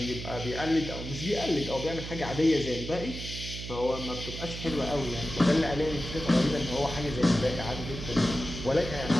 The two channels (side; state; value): right; noise; hum, 8 dB below the sound